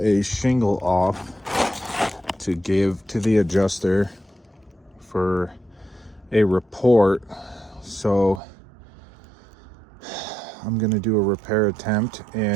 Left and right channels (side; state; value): left; drops out; at 8.4 s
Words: shingle off to give to the adjuster for a report. So I'm gonna do a repair attempt,